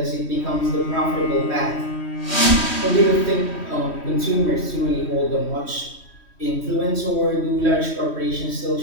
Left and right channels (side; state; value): right; late; 3.1 ms